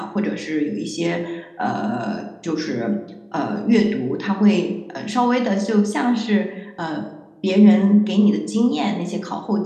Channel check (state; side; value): identical; both; correlation 1.00